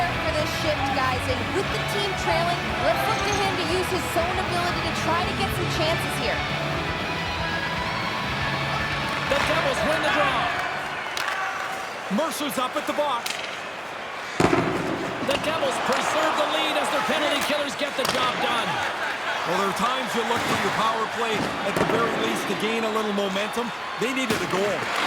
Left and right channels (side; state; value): both; identical; correlation 1.00